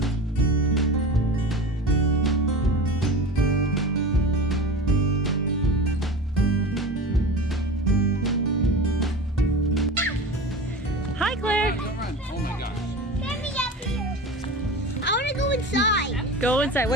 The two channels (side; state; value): both; normal; correlation 0.31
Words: Hi Claire! Oh my gosh. Get me up here. I want to go inside. Go inside.